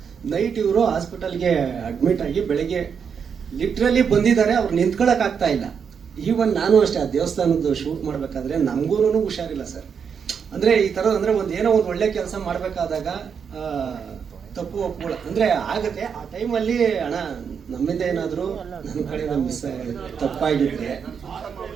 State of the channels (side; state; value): left; quieter; 6.8 dB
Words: ನೈಟ್ ಇವರು ಹಾಸ್ಪಿಟಲ್ಗೆ ಅಡ್ಮಿಟ್ ಆಗಿ ಬೆಳಗ್ಗೆ ಲಿಟ್ರಲಿ ಬಂದಿದ್ದಾರೆ. ಅವ್ರು ನಿಂತ್ಕೊಳಕ್ ಆಗ್ತಾ ಇಲ್ಲ. ಈವನ್ ನಾನು ಅಷ್ಟೇ, ಆ ದೇವಸ್ಥಾನದ್ದು ಶೂಟ್ ಮಾಡಬೇಕಾದ್ರೆ ನಮಗೂ ಹುಷಾರಿಲ್ಲ ಸರ್. ಅಂದ್ರೆ ಈ ಥರ ಅಂದ್ರೆ ಏನೋ ಒಂದು ಒಳ್ಳೆ ಕೆಲಸ ಮಾಡಬೇಕಾದಾಗ ತಪ್ಪು ಒಪ್ಕೊಳ್ಳ ಅಂದ್ರೆ ಆಗತ್ತೆ. ಆ ಟೈಮಲ್ಲಿ ಅಣ್ಣ ನಮ್ಮಿಂದ ಏನಾದರೂ ನನ್ನ ಕಡೆ ಮಿಸ್ ತಪ್ಪಾಗಿದ್ರೆ,